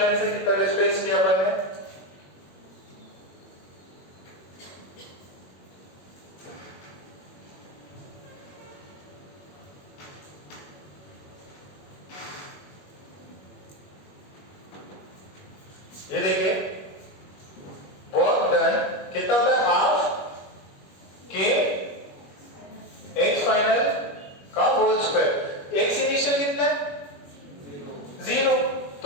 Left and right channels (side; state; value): right; late; 21 ms